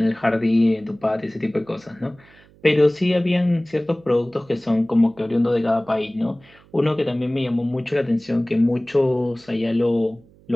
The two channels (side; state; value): right; noise; hum, 28 dB below the sound